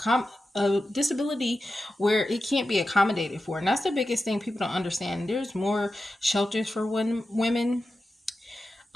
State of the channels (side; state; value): both; normal; correlation 0.92